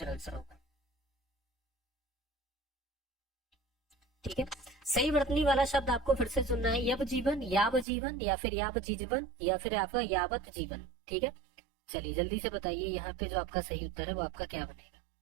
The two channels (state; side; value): drops out; left; at 7.9 s